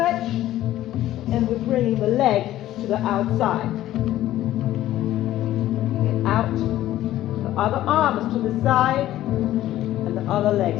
and we're bringing the leg to the outside. Get out. Other arm is to the side, and the other leg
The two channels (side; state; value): right; quieter; 13.9 dB